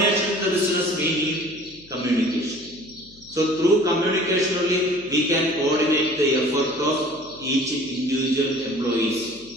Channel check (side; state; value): left; noise; hum, 25 dB below the sound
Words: to the business, we need communication. So, through communication only, we can coordinate the effort of each individual